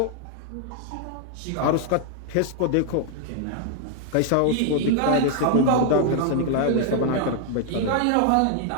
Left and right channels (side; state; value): both; different; correlation 0.00